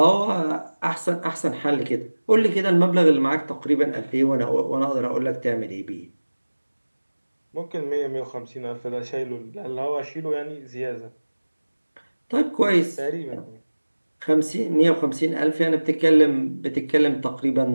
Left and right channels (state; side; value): inverted; both; correlation -1.00